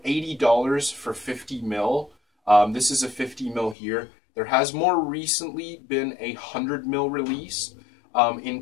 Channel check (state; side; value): drops out; right; at 3.8 s